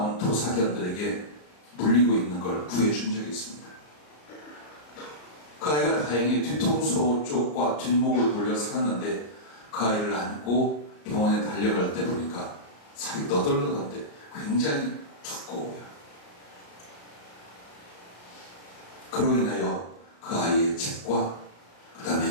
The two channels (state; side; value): late; right; 34 ms